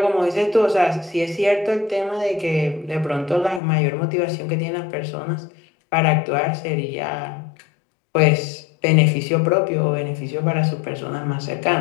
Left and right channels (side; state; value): right; drops out; at 3.6 s